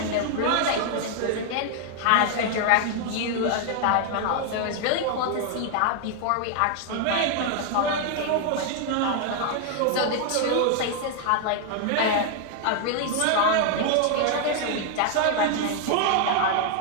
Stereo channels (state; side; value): different; both; correlation 0.00